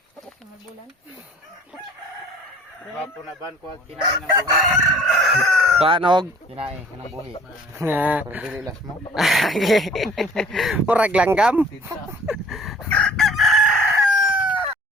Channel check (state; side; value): normal; both; correlation 0.51